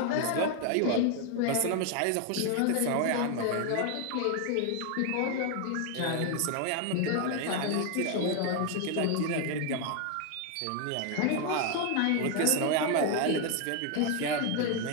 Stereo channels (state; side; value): different; both; correlation 0.01